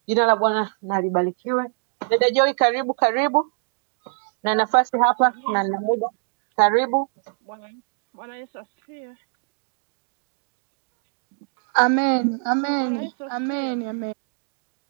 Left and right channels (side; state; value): left; silent; digital silence